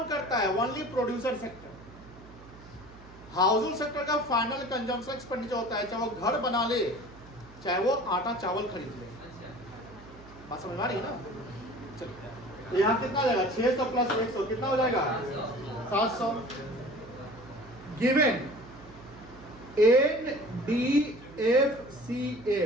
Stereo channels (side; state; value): right; noise; hum, 21 dB below the sound